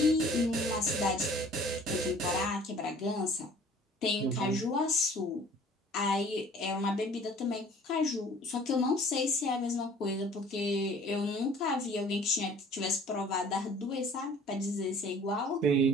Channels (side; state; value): both; normal; correlation 0.51